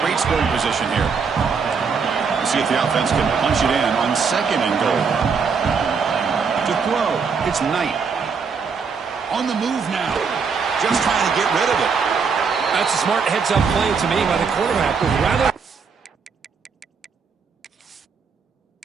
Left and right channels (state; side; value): quieter; left; 5.6 dB